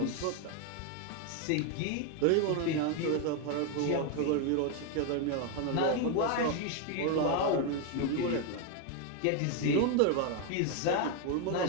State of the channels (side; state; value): both; different; correlation 0.01